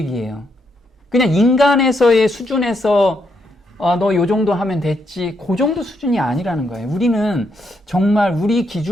그냥 인간에서의 수준에서 너 요 정도 하면 됐지 그 정도 수준이 아니라는 거예요. 우리는 정말 우리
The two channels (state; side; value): normal; both; correlation 0.78